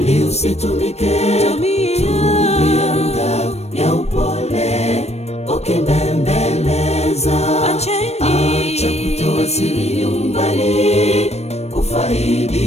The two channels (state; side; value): late; right; 0.31 ms